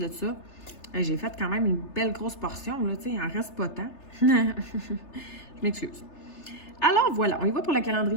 ça, j'ai fait quand même une belle grosse portion, là, tu sais, il en reste pas tant. Je m'excuse. Alors voilà, on y va pour le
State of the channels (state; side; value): late; right; 3.3 ms